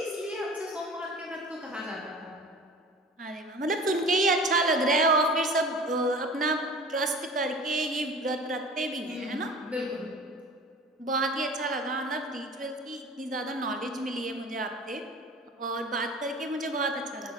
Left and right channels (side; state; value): both; normal; correlation 0.41